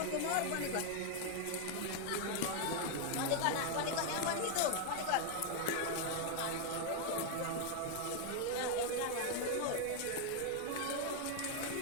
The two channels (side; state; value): both; different; correlation 0.00